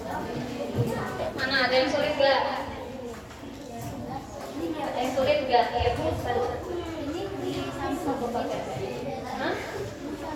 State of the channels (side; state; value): both; identical; correlation 1.00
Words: Mana ada yang sulit gak? Ada yang sulit gak? Ya, Hah?